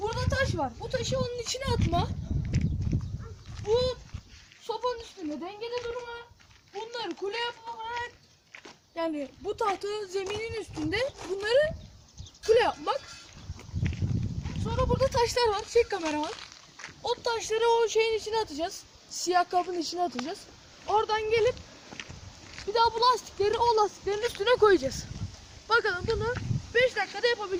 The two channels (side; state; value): both; identical; correlation 1.00